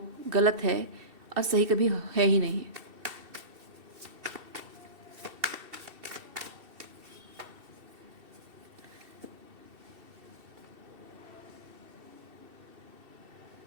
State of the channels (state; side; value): late; left; 2.7 ms